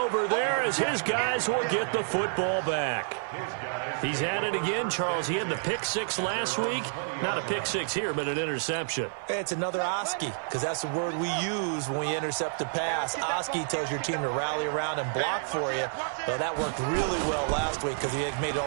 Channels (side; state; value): left; silent; 55 dB below the other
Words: there as his guys will get the football back. He's at it again, Charles. He had the pick six last week. Not a pick six here, but an interception. It's another Oski, because that's the word we use when we intercept a pass. Oski tells your team to rally around and block for you. Well, that worked really well last week because he had made it